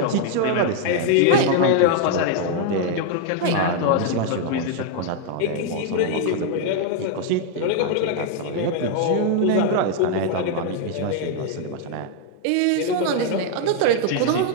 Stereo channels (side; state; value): both; different; correlation 0.00